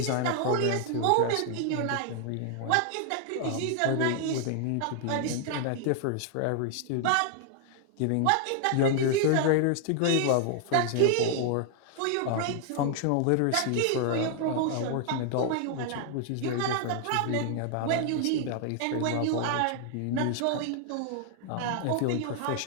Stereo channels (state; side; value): different; both; correlation 0.00